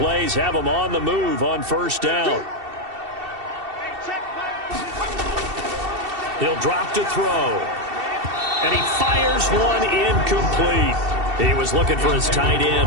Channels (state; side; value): late; left; 2.7 ms